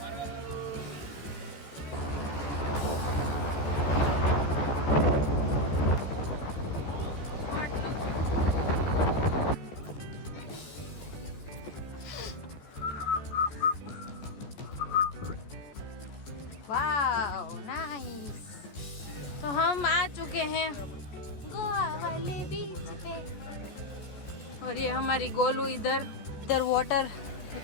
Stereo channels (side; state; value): right; late; 14 ms